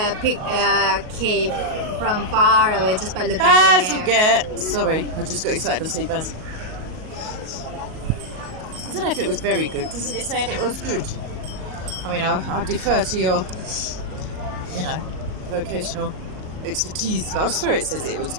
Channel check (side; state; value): left; late; 38 ms